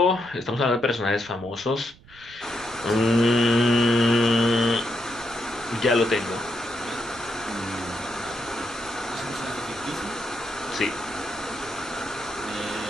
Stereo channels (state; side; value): noise; right; rumble, 24 dB below the sound